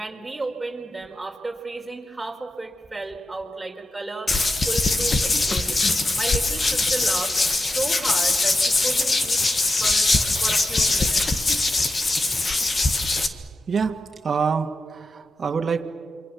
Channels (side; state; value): both; normal; correlation 0.89